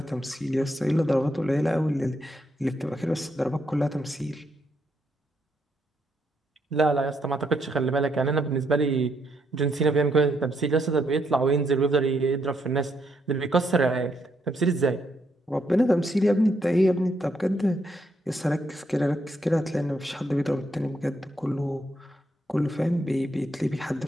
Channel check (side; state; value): both; normal; correlation 0.77